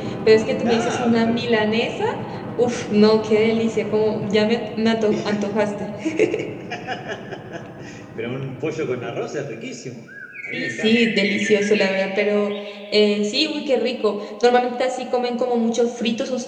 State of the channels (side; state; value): both; identical; correlation 1.00